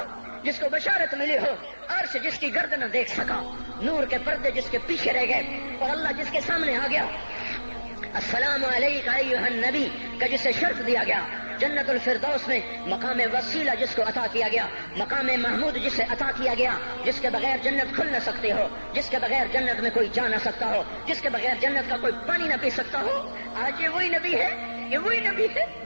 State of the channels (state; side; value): inverted; both; correlation -1.00